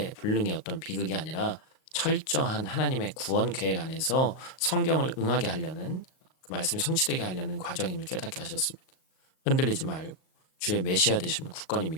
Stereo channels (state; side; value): late; right; 38 ms